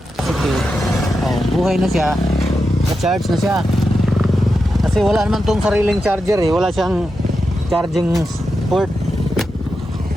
Okay. Buhay na siya. Na-charge na siya. Kasi wala naman tong sariling charger eh. Wala siyang charging port.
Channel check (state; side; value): normal; both; correlation 0.88